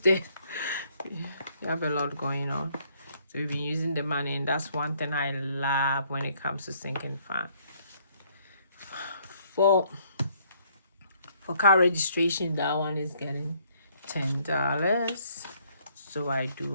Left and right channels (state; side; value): inverted; both; correlation -0.66